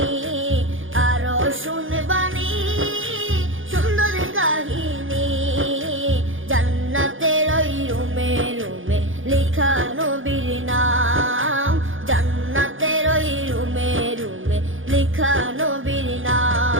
আরো শুনবানি সুন্দর কাহিনী। জান্নাতের ওই রুমে রুমে লেখা নবীর নাম, জান্নাতের ওই রুমে রুমে লেখা নবীর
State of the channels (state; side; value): late; left; 0.58 ms